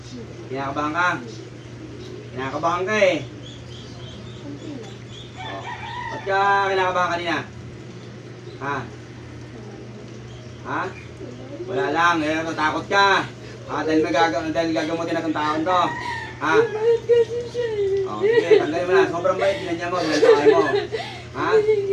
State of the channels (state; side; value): identical; both; correlation 1.00